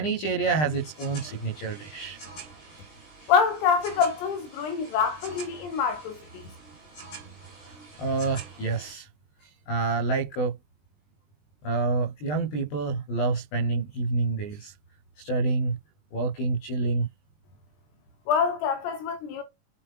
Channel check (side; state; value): right; late; 20 ms